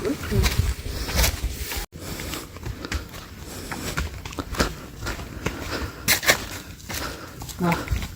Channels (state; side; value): identical; both; correlation 1.00